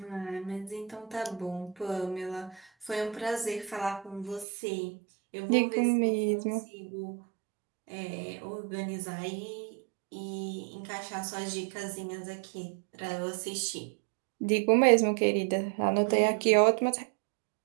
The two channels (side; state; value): left; drops out; at 4.5 s